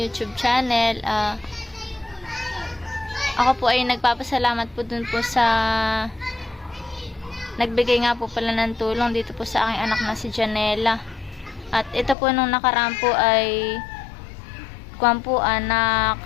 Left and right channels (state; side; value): drops out; right; at 12.2 s